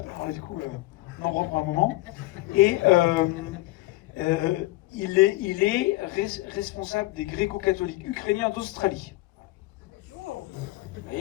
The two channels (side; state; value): right; quieter; 19.3 dB